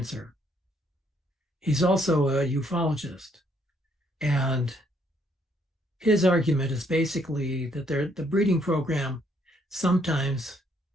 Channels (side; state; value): both; normal; correlation 0.69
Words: He's also a ufologist. And his argument is basically that the breeding program sometimes